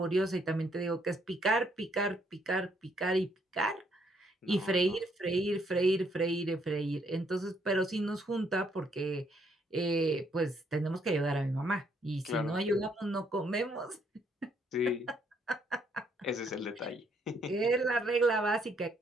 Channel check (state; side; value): normal; both; correlation 0.70